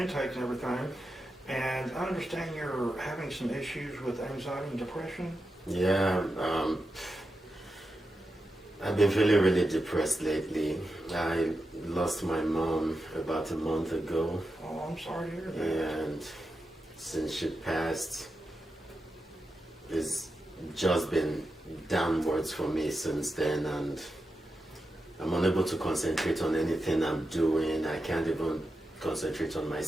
and everything, and I understand you're having some issues with anxiety and depression. Yeah, I've been feeling really depressed lately. I lost my mom about a month ago. Oh, I'm sorry to hear that. And since she passed, it's just been downwards for me since then, and I'm unable to concentrate on anything I'm doing. I can't even concentrate on my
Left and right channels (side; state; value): both; normal; correlation 0.89